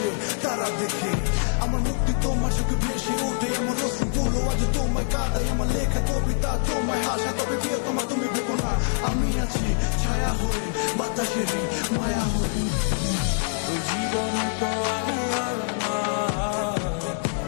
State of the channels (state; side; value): silent; right; 62 dB below the other